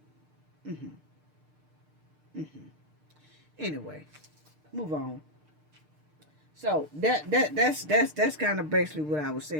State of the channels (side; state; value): left; late; 6.7 ms